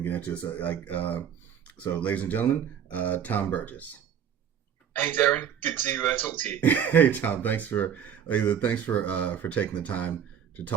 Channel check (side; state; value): left; quieter; 8.6 dB